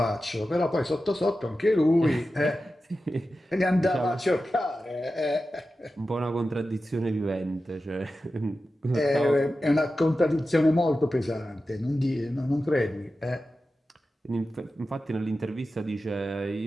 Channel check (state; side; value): normal; both; correlation 0.93